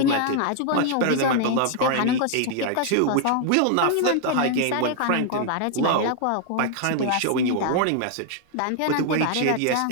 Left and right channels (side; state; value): both; different; correlation 0.00